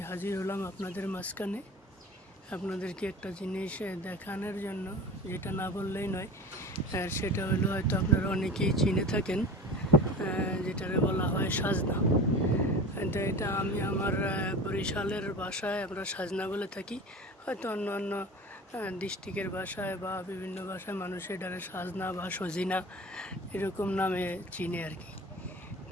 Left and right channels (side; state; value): both; normal; correlation 0.35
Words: হাজির হলাম আপনাদের মাঝখানে আপনাদেরকে একটা জিনিস দেখানোর জন্য, যেটা না বললেই নয়। সেটা হলো হয়তো আপনারা অনেকেই চিনে থাকেন, যেটারে বলা হয় সাজনা। এটা আমি আমার বরিশালের ভাষায় আমরা সাজনা বলে থাকি। হয়তো অন্য অন্য ডিস্ট্রিক্টের ভাষায় বা বিভিন্ন ভাষায় মানুষ এটারে সাজনা বা সজিনা এরকম নামে চিনে আর কি।